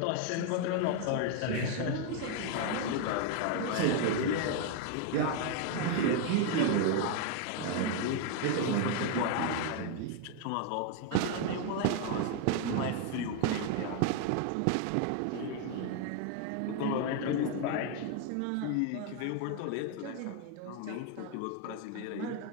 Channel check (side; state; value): both; different; correlation 0.00